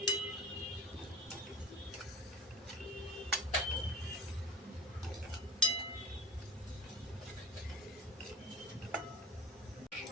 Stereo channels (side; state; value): both; normal; correlation 0.37